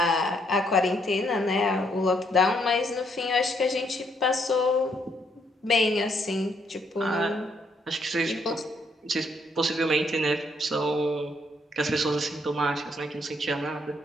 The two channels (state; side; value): normal; both; correlation 0.72